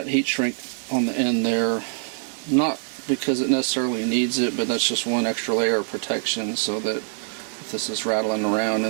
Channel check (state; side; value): silent; left; 63 dB below the other